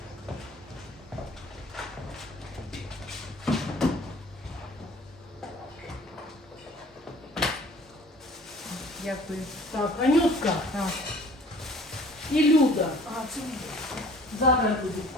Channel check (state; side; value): normal; both; correlation 0.50